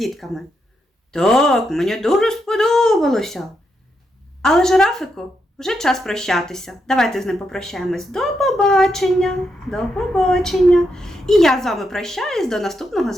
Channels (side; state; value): both; normal; correlation 0.82